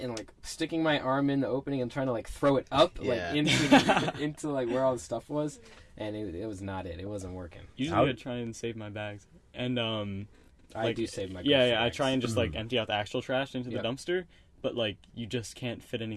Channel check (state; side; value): identical; both; correlation 1.00